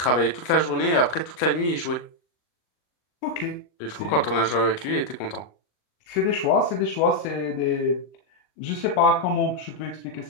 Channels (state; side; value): late; right; 39 ms